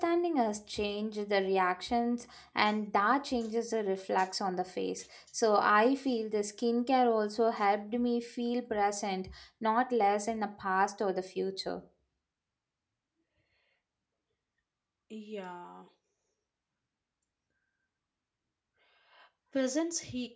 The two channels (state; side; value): identical; both; correlation 1.00